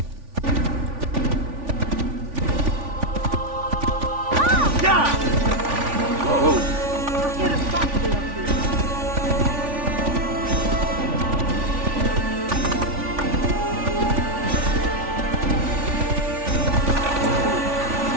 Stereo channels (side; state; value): left; late; 3.5 ms